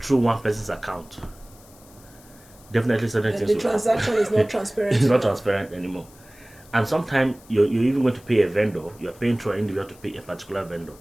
one person's account, definitely certain things the will transaction happen. is not transparent. It's not transparent anymore. And sometimes you're even going to pay a vendor. You're paying through an individual to pay a particular vendor,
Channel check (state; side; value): noise; left; hiss, 25 dB below the sound